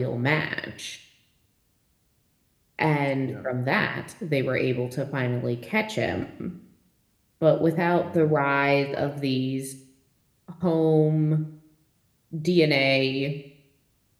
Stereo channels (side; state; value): both; identical; correlation 1.00